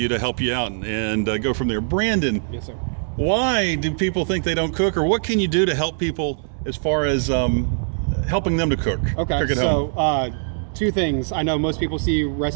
to help you out and go from there. Brandon, yes, sir. Why do people think they don't cook, or what can you do to help people as far as helping them to cook? Okay, cook at home? Two things. I know most people see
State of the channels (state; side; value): silent; left; 64 dB below the other